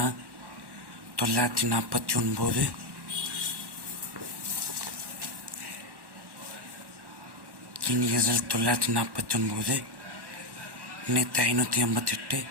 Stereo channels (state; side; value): late; left; 1.1 ms